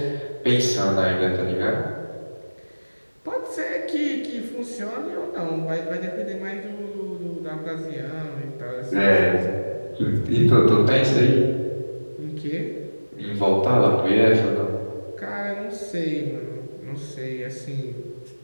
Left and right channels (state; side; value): inverted; both; correlation -1.00